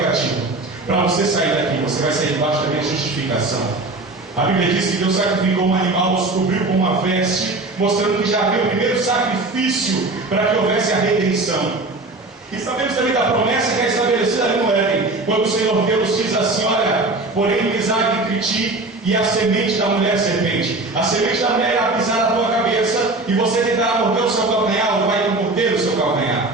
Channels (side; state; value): left; quieter; 3.1 dB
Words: para você sair daqui, você vai sair debaixo da minha justificação. A Bíblia diz que Deus sacrificou um animal, os cobriu com uma veste, mostrando que já havia o primeiro sacrifício para que houvesse a redenção. E sabemos também da promessa que é estabelecida ali no Éden, quando o Senhor Deus diz assim: olha, porém inimizade entre ti e a semente da mulher serpente. A semente da mulher irá pisar na tua cabeça, e você tentará morder o seu calcanhar, ou vai morder o seu calcanhar.